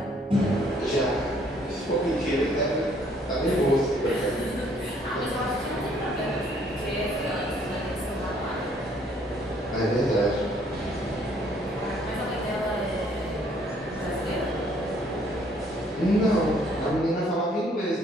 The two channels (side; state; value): both; normal; correlation 0.63